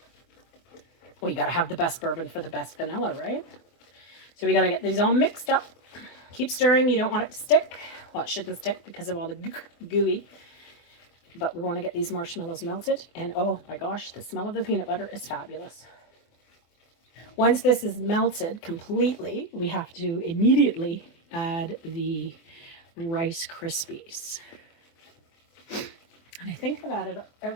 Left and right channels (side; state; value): right; late; 24 ms